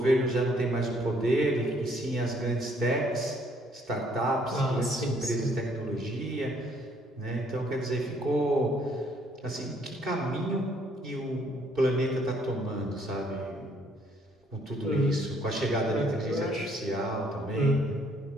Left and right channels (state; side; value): normal; both; correlation 0.65